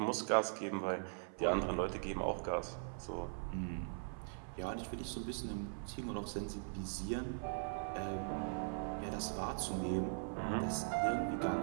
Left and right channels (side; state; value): left; silent; 51 dB below the other